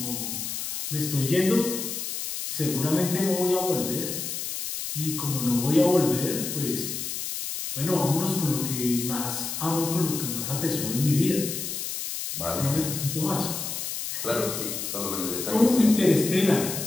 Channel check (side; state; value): left; noise; hiss, 5 dB below the sound